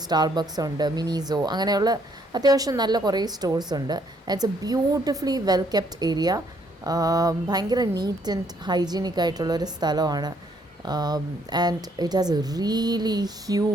സ്റ്റാർബക്സ് ഉണ്ട്, മിനിസോ, അങ്ങനെയുള്ള അത്യാവശ്യം നല്ല കുറേ സ്റ്റോഴ്സ് ഉണ്ട്. It's a beautifully well kept area. ഭയങ്കര നീറ്റ് ആൻഡ് ഹൈജീനിക് ആയിട്ടുള്ളൊരു സ്ഥലമാണ്. ആൻഡ് ഇറ്റ് ഹാസ് എ റിയലി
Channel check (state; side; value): normal; both; correlation 0.68